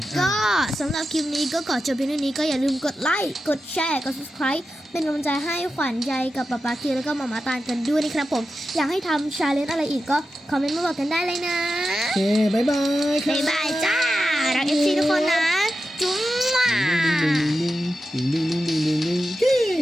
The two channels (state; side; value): normal; both; correlation 0.91